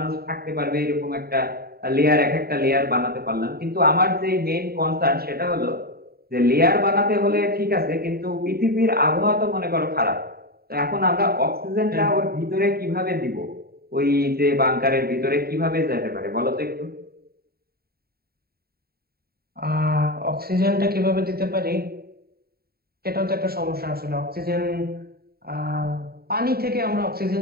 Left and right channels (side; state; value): left; late; 0.45 ms